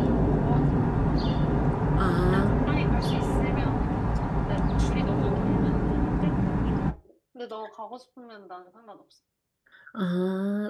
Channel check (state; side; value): identical; both; correlation 1.00